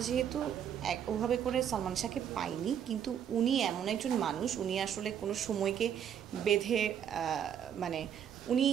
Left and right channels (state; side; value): quieter; left; 8.9 dB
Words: যেহেতু ওভাবে করে সালমান শাহকে পাইনি, কিন্তু উনি এমন একজন মানুষ, উনি আসলে কোনো সময়কে বেঁধে মানে উনি